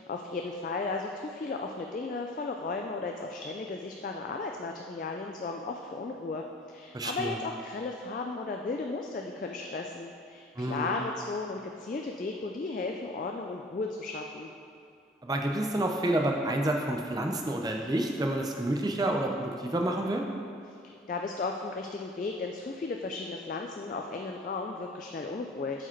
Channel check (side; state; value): both; normal; correlation 0.50